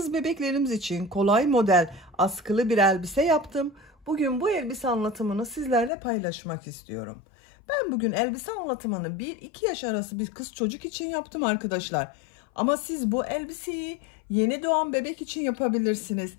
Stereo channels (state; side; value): drops out; right; at 5.9 s